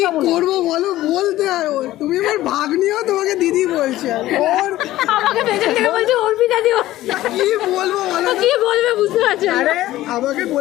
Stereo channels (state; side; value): quieter; right; 15.4 dB